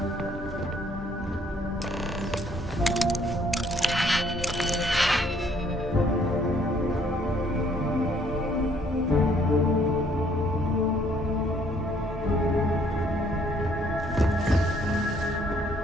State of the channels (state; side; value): normal; both; correlation 0.64